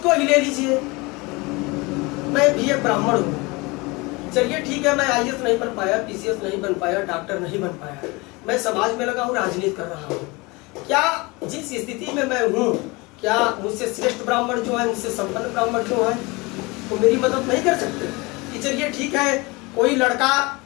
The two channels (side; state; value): right; quieter; 25.0 dB